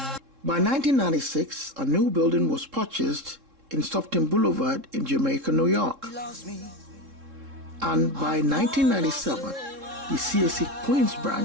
By 1996, a new building was purchased in Stockton Boulevard in Jamaica, New York. And by 1997, the CAC Queens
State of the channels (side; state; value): left; late; 3.7 ms